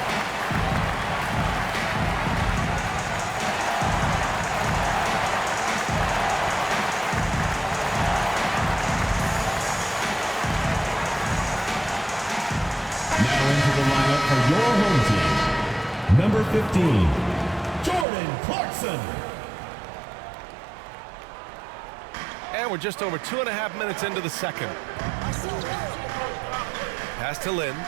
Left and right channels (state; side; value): drops out; left; at 18.1 s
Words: Number 15, Jordan Clarkson. And we're just over 2.5 minutes into the second. Pass to Lynn.